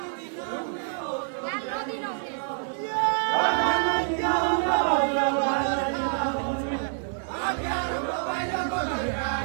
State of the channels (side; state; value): left; silent; digital silence